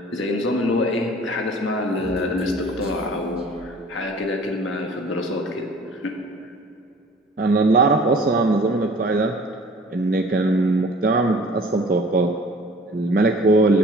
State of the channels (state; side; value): normal; both; correlation 0.48